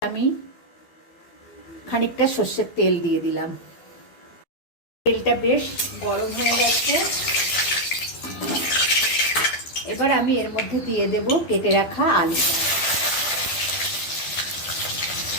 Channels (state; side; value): late; right; 12 ms